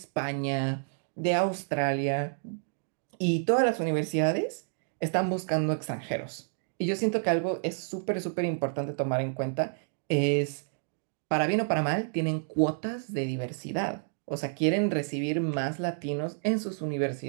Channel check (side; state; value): left; silent; digital silence